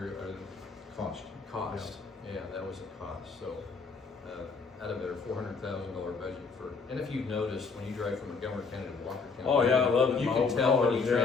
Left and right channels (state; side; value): quieter; right; 4.7 dB